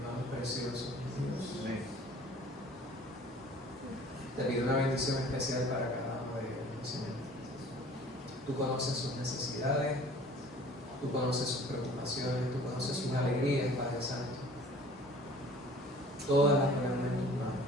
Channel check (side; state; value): both; normal; correlation 0.49